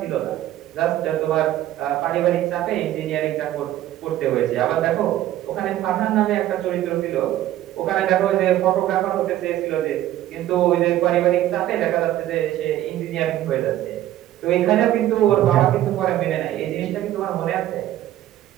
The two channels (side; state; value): left; quieter; 13.4 dB